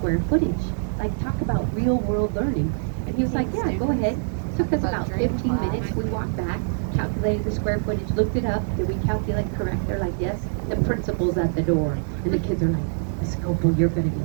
footage. Like talk about real world learning. And he was like, yeah, go ahead. Took us about 15 minutes. We walked back, calculated the square footage, looked it up. Did we calculate correct? They're like, yes. The principal's at the door. And the kids are like, Scopel, you're going to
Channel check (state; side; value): silent; left; digital silence